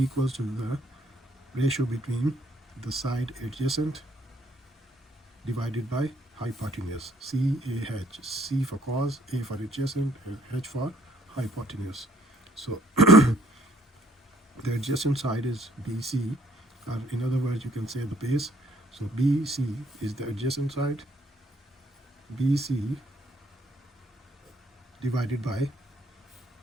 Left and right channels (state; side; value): normal; both; correlation 0.65